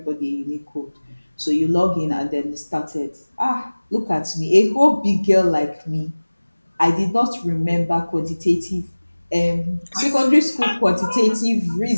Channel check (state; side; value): inverted; both; correlation -1.00